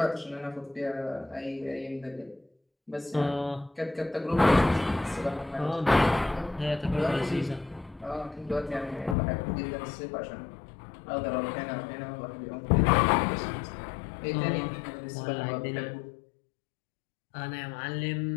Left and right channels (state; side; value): drops out; right; at 9.2 s